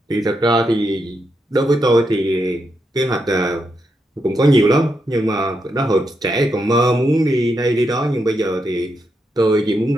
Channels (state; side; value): normal; both; correlation 0.83